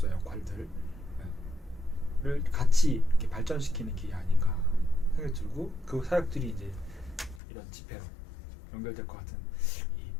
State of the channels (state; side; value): drops out; right; at 7.4 s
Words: 역할들을 같이 이렇게 발전시키는 길이 아닌가 생각이 들고 그 사역들이 이제 이런 집회로 연결될 것 같은 이